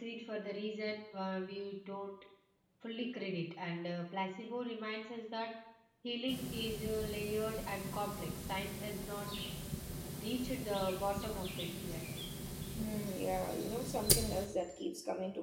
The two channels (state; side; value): identical; both; correlation 1.00